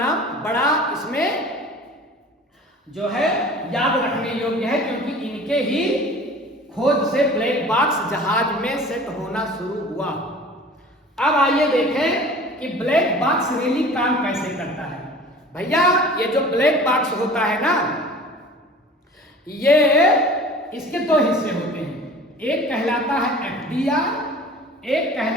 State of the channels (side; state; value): both; normal; correlation 0.43